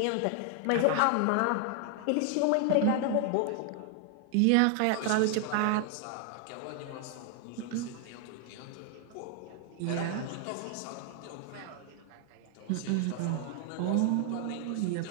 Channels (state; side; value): different; both; correlation 0.00